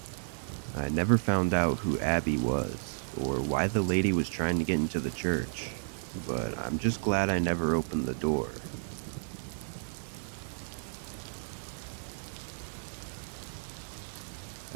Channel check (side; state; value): left; silent; 56 dB below the other